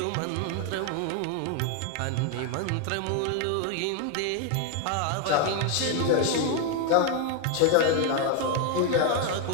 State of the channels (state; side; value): different; both; correlation 0.01